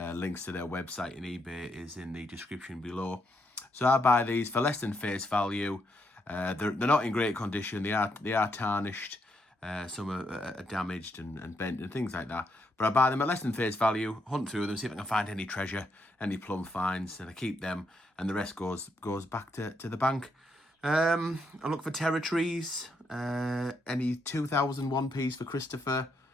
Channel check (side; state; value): both; normal; correlation 0.78